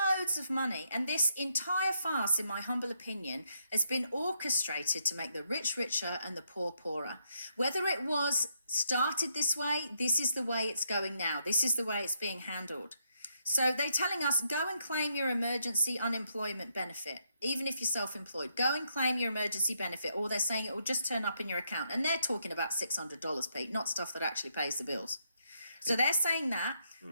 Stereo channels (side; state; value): both; inverted; correlation -0.77